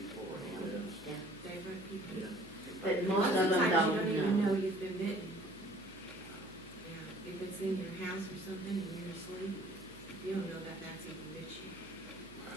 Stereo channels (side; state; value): right; noise; hum, 20 dB below the sound